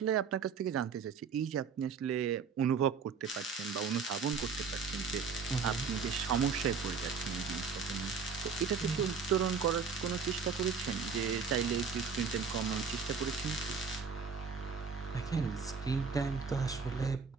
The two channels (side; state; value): left; quieter; 5.6 dB